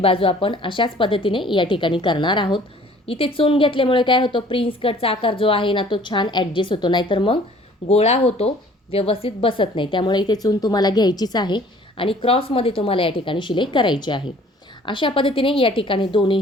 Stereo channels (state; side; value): normal; both; correlation 0.53